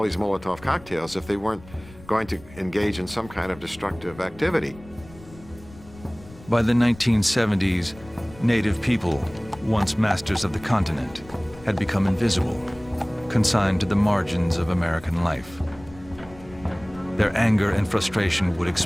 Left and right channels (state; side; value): noise; left; rumble, 21 dB below the sound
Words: these Molotov cocktails if they weren't going to engage in some kind of destructive activity? By the 1970s, Native people, once masters of the continent, had become invisible, consigned to the margins of American life. Their anger and frustration would